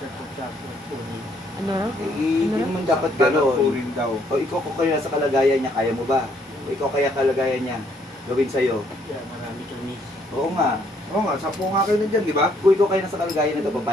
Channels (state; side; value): normal; both; correlation 0.68